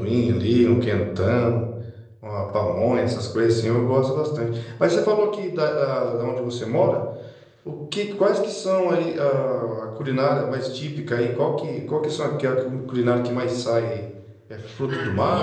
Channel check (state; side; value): identical; both; correlation 1.00